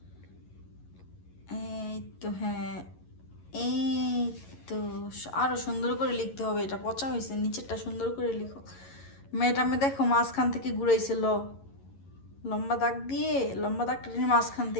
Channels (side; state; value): right; late; 11 ms